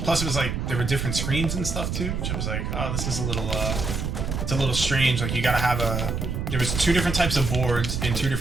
Plus, it was like there were different screens and stuff too, which I was like, oh, this is a little, it's a little strange. Like you gotta have there was 2 different types of boards and 2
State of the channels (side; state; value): right; noise; rumble, 2 dB below the sound